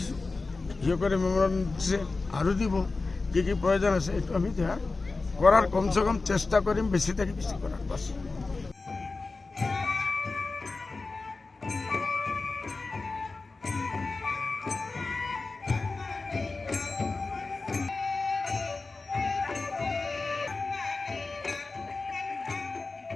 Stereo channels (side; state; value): right; quieter; 3.7 dB